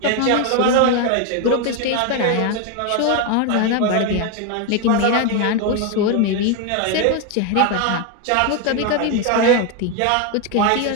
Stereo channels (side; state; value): both; different; correlation 0.01